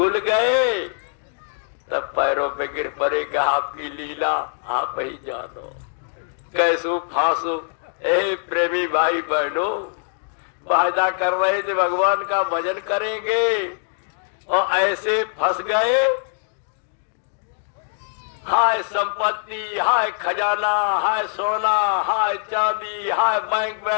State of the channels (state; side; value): silent; right; digital silence